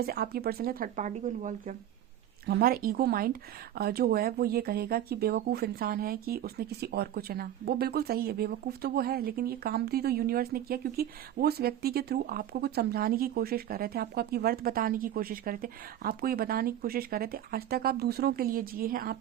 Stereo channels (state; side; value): quieter; left; 11.6 dB